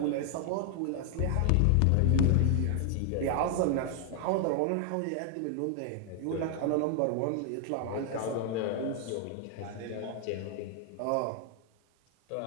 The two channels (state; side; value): different; both; correlation 0.00